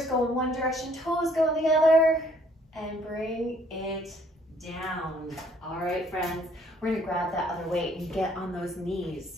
go in one direction, toes go in the other. And bring it down. All right, friends. We're gonna grab that other weight and get on those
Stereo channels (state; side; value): normal; both; correlation 0.62